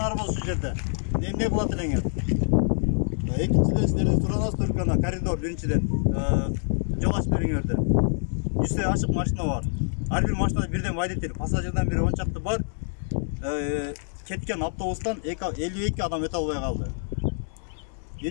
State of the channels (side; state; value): right; silent; digital silence